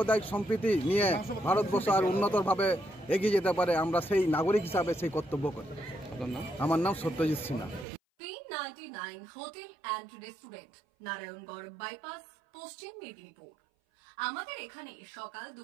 সম্প্রীতি নিয়ে ভারতবর্ষ আর উন্নতভাবে এগিয়ে যেতে পারে। আমরা সেই নাগরিক হিসাবে সেই কর্তব্য করি। আমার নাম Satyajit Sinha. 399 hotel and restaurant, Narayangarh bypass, পশ্চিম মেদিনীপুর। আমাদের এখানে সকাল,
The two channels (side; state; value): left; drops out; at 7.9 s